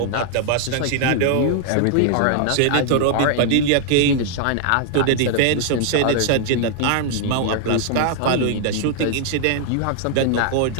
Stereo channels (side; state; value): both; different; correlation 0.00